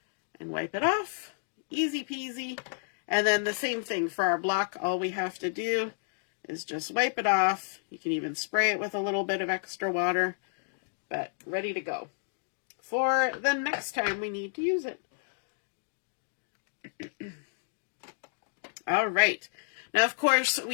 and wipe it off. Easy peasy. And then the same thing for our block. All we have to do is just wipe it off. You can even spray it with a little bit of extra water, but ready to go. for the next time we need to use it. All right. Now, of course,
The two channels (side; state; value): right; silent; digital silence